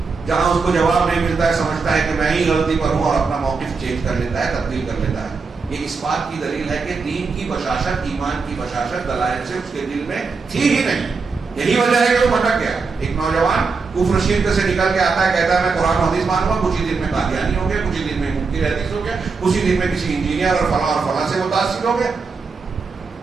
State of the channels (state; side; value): quieter; left; 4.7 dB